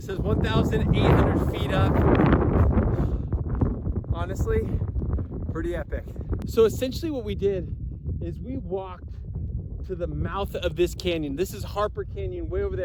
says 1,800 feet up. Honestly, pretty epic. So essentially what we did is we walked to the mouth of this canyon. This is Harper Canyon way over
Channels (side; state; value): both; identical; correlation 1.00